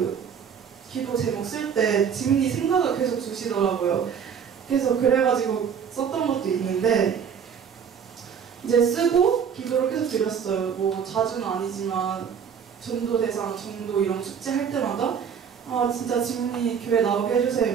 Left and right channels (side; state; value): left; quieter; 7.3 dB